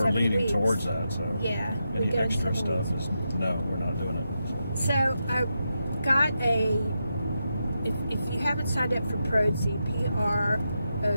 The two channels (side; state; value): both; inverted; correlation -0.86